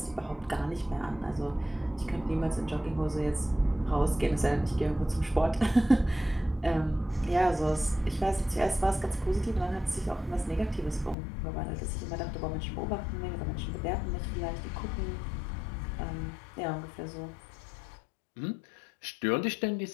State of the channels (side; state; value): right; drops out; at 11.2 s